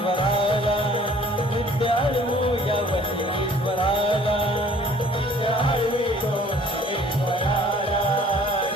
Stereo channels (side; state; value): both; normal; correlation 0.54